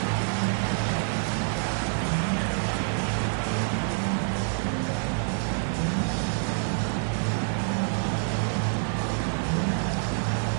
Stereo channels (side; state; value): left; silent; 59 dB below the other